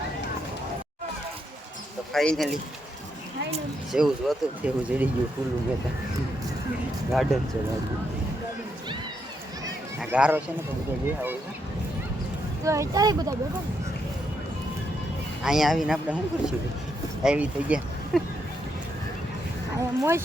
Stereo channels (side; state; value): both; normal; correlation 0.79